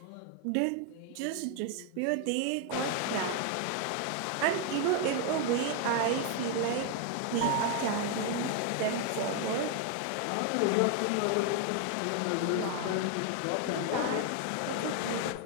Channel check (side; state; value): both; different; correlation 0.00